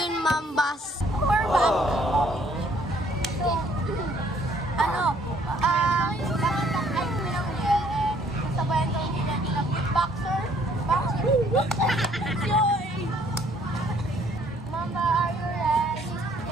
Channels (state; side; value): normal; both; correlation 0.62